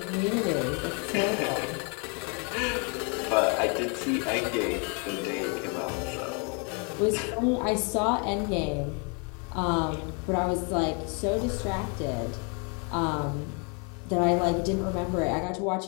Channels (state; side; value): quieter; right; 35.9 dB